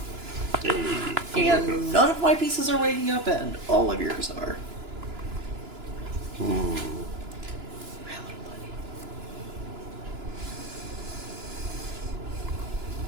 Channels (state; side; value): late; left; 2.9 ms